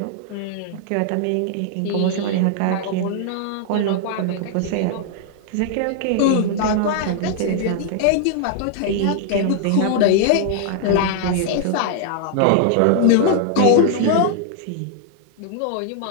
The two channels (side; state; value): both; different; correlation 0.00